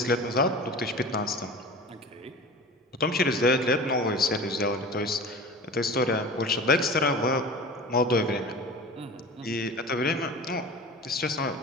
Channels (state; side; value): normal; both; correlation 0.36